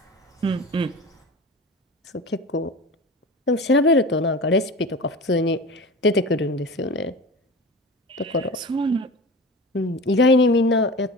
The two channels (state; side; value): normal; both; correlation 0.33